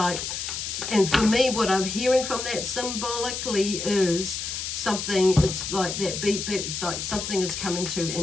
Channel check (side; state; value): left; noise; hiss, 4 dB below the sound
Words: and for me, what I'm hearing from that symbolically is something, it's like that beep beep, it's like something is coming to